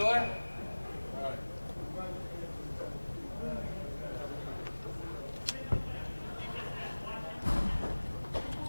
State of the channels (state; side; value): inverted; both; correlation -1.00